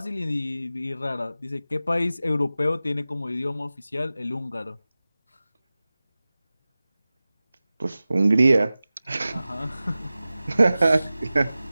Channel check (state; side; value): inverted; both; correlation -0.96